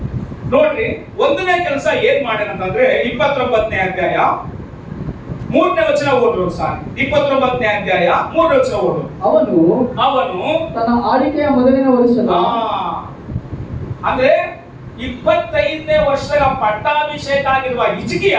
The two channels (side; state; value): both; identical; correlation 1.00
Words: ನೋಡ್ರಿ, ಒಂದನೇ ಕೆಲಸ ಏನ್ ಮಾಡ್ಯಾನಂತಂದ್ರೆ 29ನೇ ಅಧ್ಯಾಯ 3ನೇ ವಚನ ಓದ್ರು ಸಾರಿ. 29ನೇ ಅಧ್ಯಾಯ 3ನೇ ವಚನ ಓದು. ಅವನು ತನ್ನ ಆಳ್ವಿಕೆಯ ಮೊದಲನೇ ವರ್ಷದ ಅಂದ್ರೆ 25ನೇ ವರ್ಷದ ಪಟ್ಟಾಭಿಷೇಕ ಆಗಿರುವ ಹಿಜ್ಕೀಯ